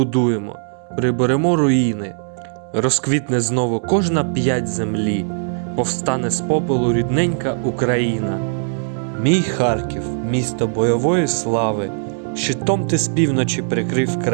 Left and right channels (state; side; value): silent; left; 66 dB below the other